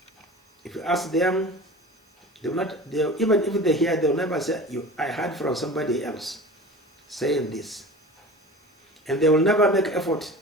if you ask them, they will not, even if they hear, they will never say, I heard from somebody else saying this. And they will never make effort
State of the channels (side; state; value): both; normal; correlation 0.37